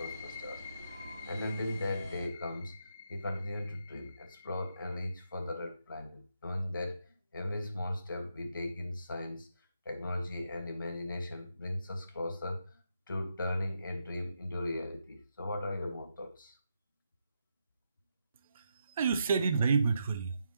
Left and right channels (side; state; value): both; inverted; correlation -0.82